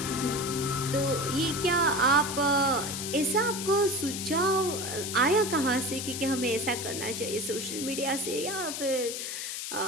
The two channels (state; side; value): noise; left; hiss, 5 dB below the sound